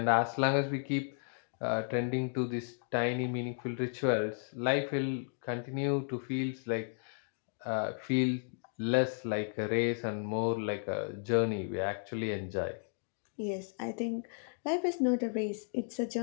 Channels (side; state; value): right; silent; digital silence